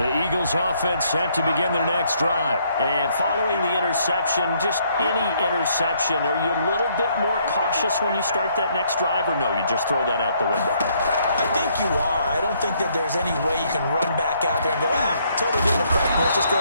Eagles offense set to begin their next drive. And following the interception, just any interception, are you a little bit more cautious when you start that next drive, or no, you just throw that out the window? I think you are. I don't think that there's any way you can run back out there and go, totally didn't affect me. Let's just go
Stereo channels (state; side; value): inverted; both; correlation -0.69